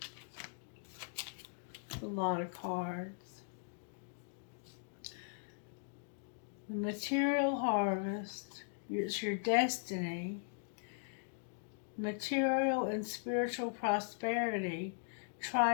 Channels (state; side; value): silent; right; digital silence